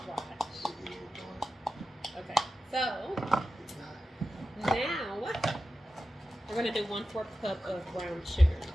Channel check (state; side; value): normal; both; correlation 0.92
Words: Watch. Okay, so now we're gonna do 1/4 cup of brown sugar.